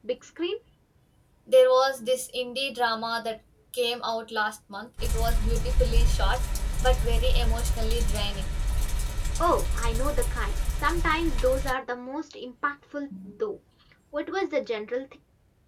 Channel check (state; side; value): identical; both; correlation 1.00